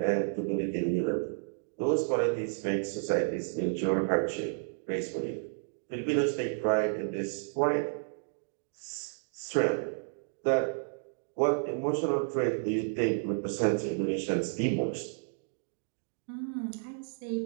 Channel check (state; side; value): silent; left; digital silence